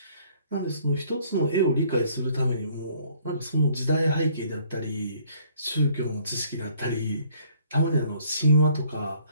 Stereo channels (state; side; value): inverted; both; correlation -0.60